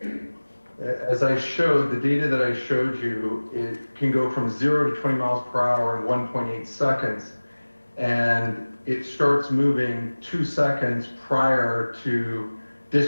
As I showed, the data that I showed you, it can go from 0 to 20 miles per hour in 1.8 seconds. And it starts moving 2 seconds prior to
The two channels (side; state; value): both; inverted; correlation -1.00